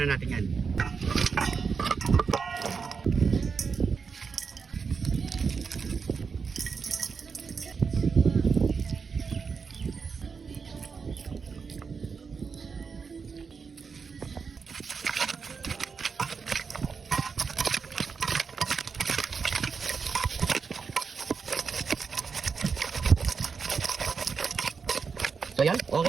na natin yan. So yan,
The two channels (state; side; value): quieter; left; 5.5 dB